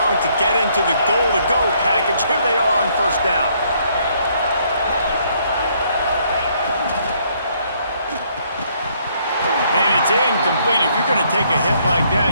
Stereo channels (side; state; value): both; inverted; correlation -0.68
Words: to get into the goal-to-go package. Here they are on first down. And it's incomplete. If you're going to take a hit like